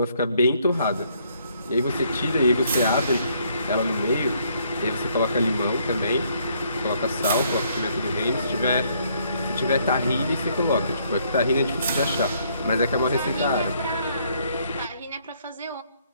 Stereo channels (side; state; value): both; inverted; correlation -0.68